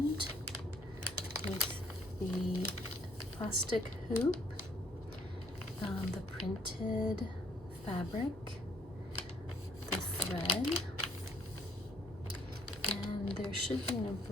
with the plastic hoop, the printed fabric, the thread, and there should be an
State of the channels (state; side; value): normal; both; correlation 0.64